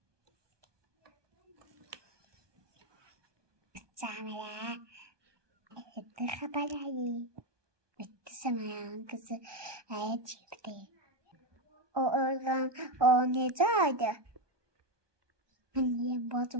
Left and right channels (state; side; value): late; left; 1.2 ms